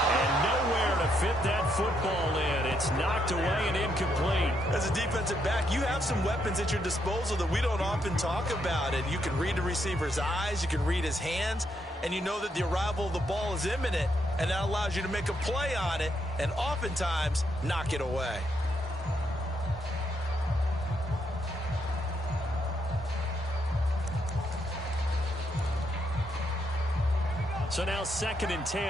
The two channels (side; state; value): both; normal; correlation 0.77